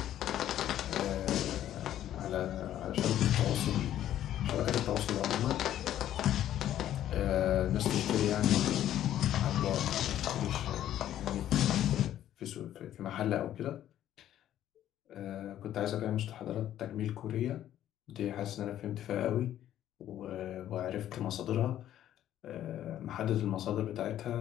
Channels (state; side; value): quieter; right; 11.9 dB